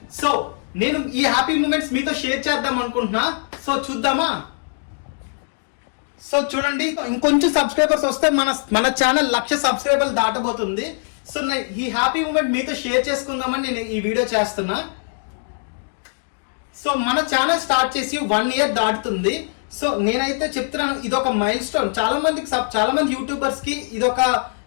సో నేను ఈ హ్యాపీ మూమెంట్స్ మీతో షేర్ చేద్దాం అనుకుంటున్నా. సో చూద్దామా? సో చూడండి, ఇంకొంచెం సబ్స్క్రైబర్స్ వస్తే మన ఛానల్ 1,00,000 సబ్స్క్రైబర్లు దాటబోతుంది. సో ఈ హ్యాపీ మూమెంట్ మీతో షేర్ చేసుకుందామని నేను ఈ వీడియో చేస్తున్నా. సో మన ఛానల్ స్టార్ట్ చేసి 1 year దాటుతుంది. సో నేనైతే చెప్తున్నాను, ఇదొక మైల్ స్టోన్. చాలా మంది యూట్యూబర్స్ కి ఇదొక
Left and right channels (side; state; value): right; silent; digital silence